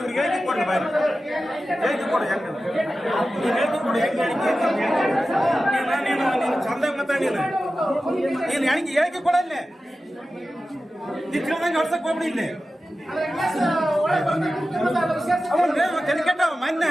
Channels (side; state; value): both; normal; correlation 0.94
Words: ಹೇಳಿಕೆ ಕೊಡಿ ಬಾರಿ ಹೇಳಿಕೆ ಕೊಡಿ ಹೆಂಗೆ ನೀನು ಹೇಳಿಕೆ ಕೊಡಿ ಹೆಂಗೆ ನೀನು ಚಂದ ಮಾತಾಡಿ ನೀನು ಹೇಳಿಕೆ ಕೊಡಲ್ಲೇ ನೀನು ತಿಳಿದಂಗೆ ಹೊಡ್ಸಕ್ ಹೋಗ್ಬಿಡಿ ಇಲ್ಲಿ ಅವನು ಕೆಟ್ಟ ಮೊನ್ನೆ